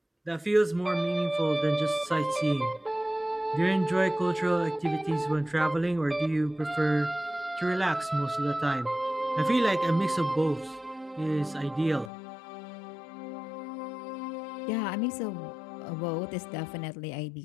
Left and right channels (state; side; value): drops out; right; at 12.1 s